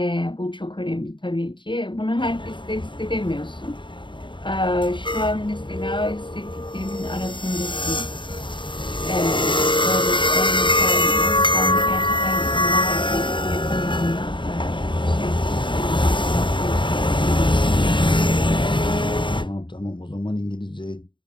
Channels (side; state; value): right; late; 0.23 ms